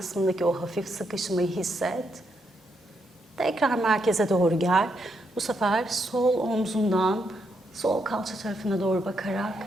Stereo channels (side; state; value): both; normal; correlation 0.79